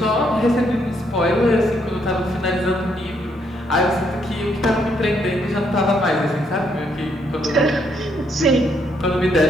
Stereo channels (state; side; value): normal; both; correlation 0.73